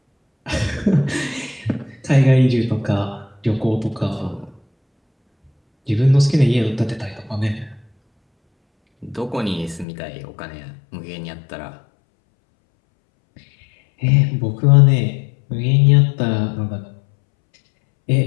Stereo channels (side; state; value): right; drops out; at 9.9 s